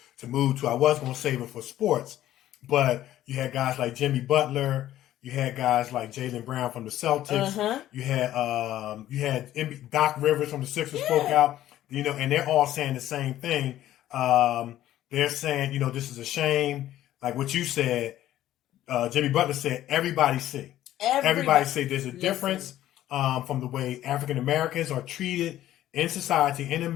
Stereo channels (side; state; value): right; quieter; 13.3 dB